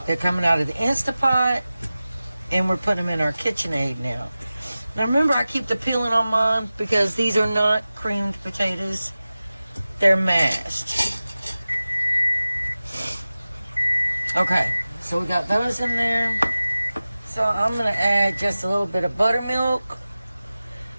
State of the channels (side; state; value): both; inverted; correlation -0.96